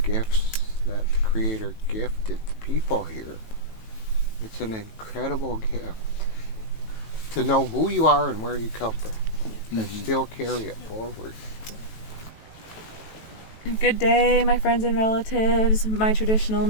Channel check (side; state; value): right; late; 18 ms